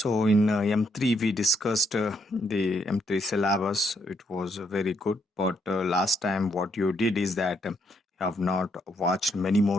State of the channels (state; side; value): normal; both; correlation 0.75